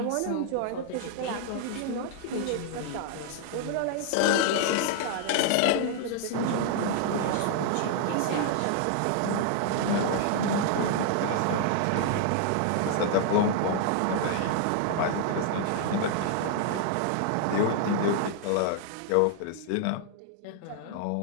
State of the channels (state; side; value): different; both; correlation 0.00